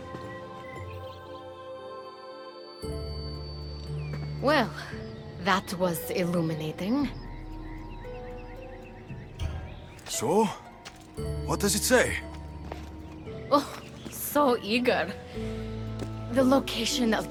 Well, that was illuminating. So? What does it say? Oh, so eager. The location of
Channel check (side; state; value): both; identical; correlation 1.00